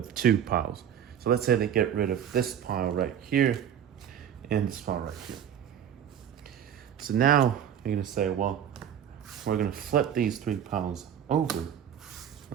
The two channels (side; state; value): left; quieter; 9.2 dB